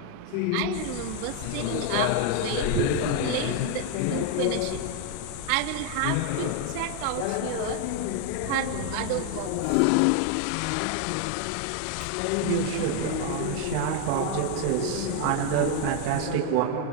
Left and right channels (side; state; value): both; different; correlation 0.01